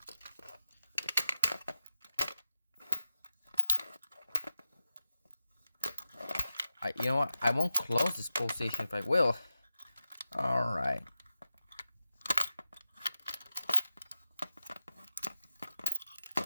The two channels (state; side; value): inverted; both; correlation -0.91